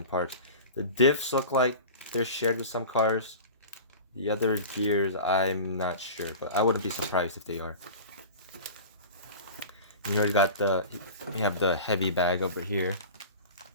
parts. The diffs look like they're shared with some cars. The other gears, I'm not sure, but I wouldn't be surprised if they are. You already got we have the heavy bag over here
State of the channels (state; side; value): inverted; both; correlation -0.34